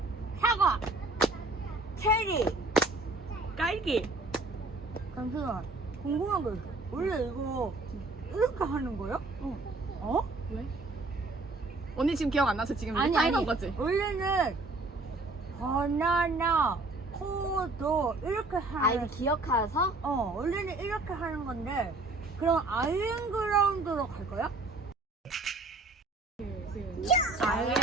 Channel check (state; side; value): quieter; left; 3.1 dB